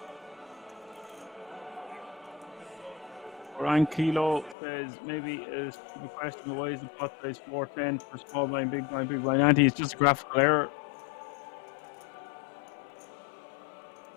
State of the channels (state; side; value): drops out; right; at 4.5 s